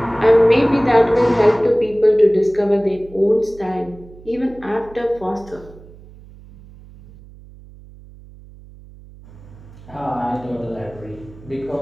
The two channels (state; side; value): noise; right; hum, 21 dB below the sound